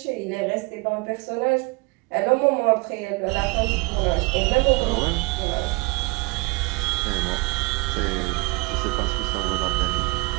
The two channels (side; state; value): left; quieter; 26.2 dB